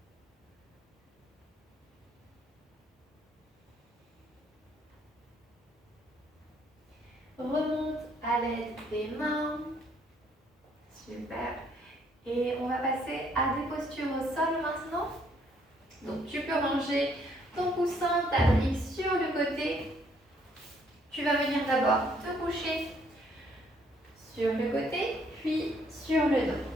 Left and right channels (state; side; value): normal; both; correlation 0.67